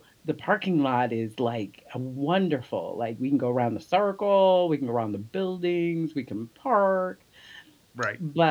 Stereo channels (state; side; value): identical; both; correlation 1.00